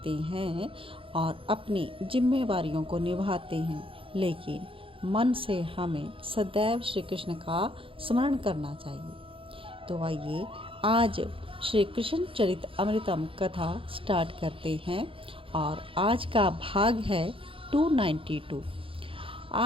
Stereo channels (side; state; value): left; late; 0.26 ms